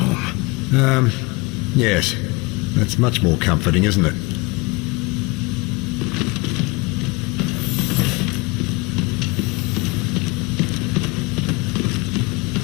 Yes. That's much more comforting, isn't it?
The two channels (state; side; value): quieter; right; 25.7 dB